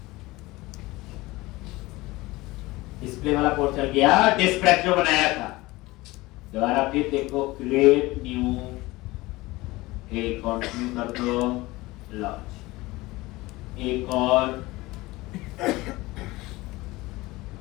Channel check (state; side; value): quieter; right; 20.4 dB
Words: डिस्प्ले वाला कोड चल गया, डिस्प्ले जो बनाया था। दोबारा फिर देखो क्रिएट न्यू, एक कंटिन्यू कर दो, लॉन्च, एक और